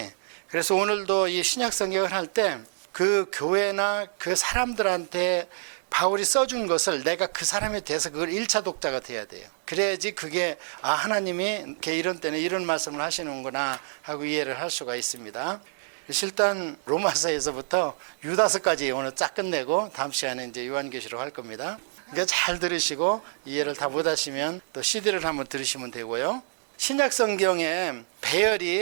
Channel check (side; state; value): left; silent; digital silence